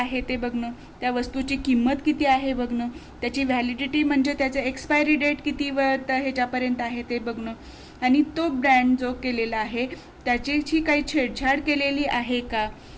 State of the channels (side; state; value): both; identical; correlation 1.00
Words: ते बघणं, त्या वस्तूची किंमत किती आहे बघणं, त्याची व्हॅलिडिटी म्हणजे त्याचं एक्सपायरी डेट किती ह्याच्यापर्यंत आहे ते बघणं, आणि तो ब्रँड जो केलेला आहे त्याची काही छेडछाड केलेली आहे का